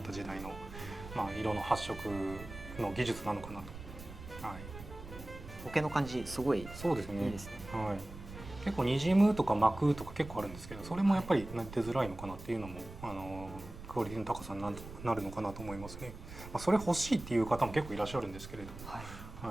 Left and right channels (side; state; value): right; noise; rumble, 13 dB below the sound